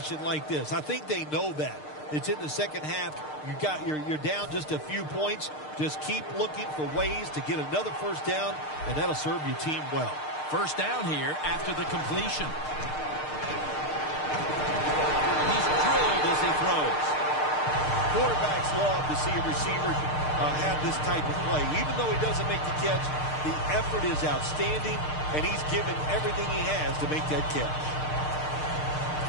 like this. I think they know that. It's in the second half. You're down just a few points. Just keep looking for ways to get another first down, and that'll serve your team well. First down here after the completion. He's drilled as he throws. Quarterbacks love to see a receiver have this type of play. Even though he doesn't make the catch, the effort is outstanding, and he's given everything he has to make that catch.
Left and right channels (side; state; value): right; late; 6.6 ms